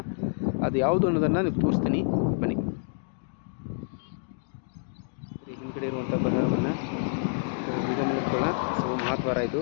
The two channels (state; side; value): silent; right; digital silence